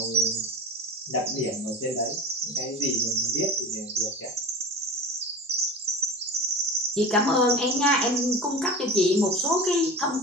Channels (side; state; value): both; normal; correlation 0.32